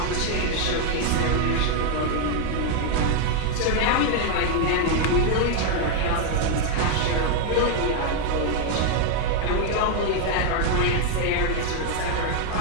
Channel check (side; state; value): both; different; correlation 0.01